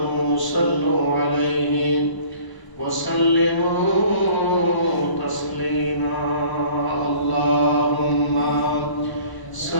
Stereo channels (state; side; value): late; right; 1.0 ms